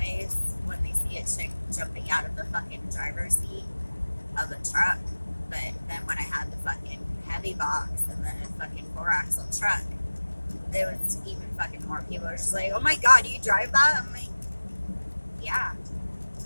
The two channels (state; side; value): inverted; both; correlation -1.00